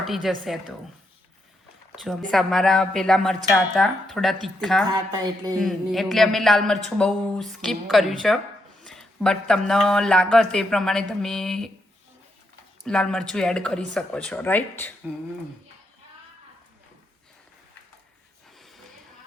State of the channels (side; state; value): both; normal; correlation 0.80